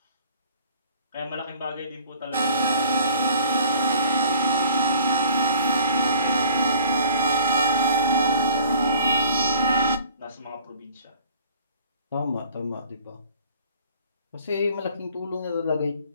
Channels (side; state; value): both; inverted; correlation -0.50